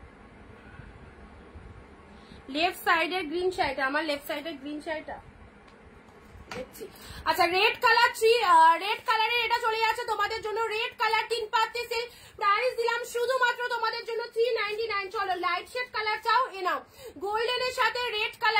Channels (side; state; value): both; identical; correlation 1.00